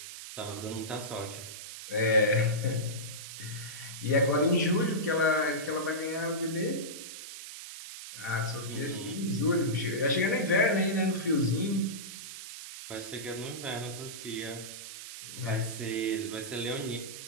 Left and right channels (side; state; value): right; noise; hiss, 11 dB below the sound